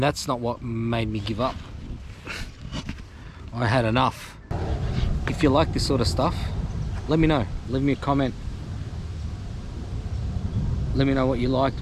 not what made me give up. I had enough. If you like this sort of stuff, let me know. Leave me a comment. Let me know what you liked,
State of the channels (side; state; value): both; identical; correlation 1.00